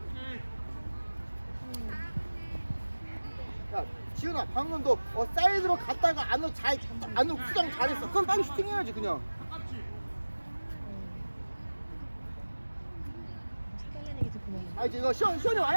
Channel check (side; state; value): both; inverted; correlation -1.00